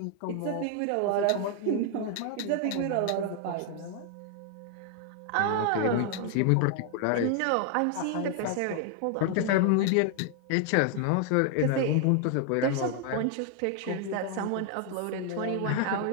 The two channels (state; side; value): different; both; correlation 0.00